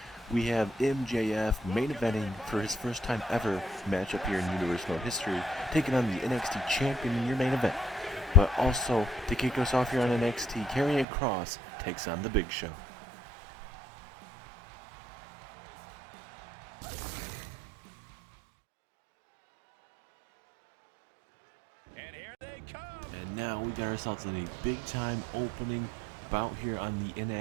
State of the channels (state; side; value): drops out; left; at 11.1 s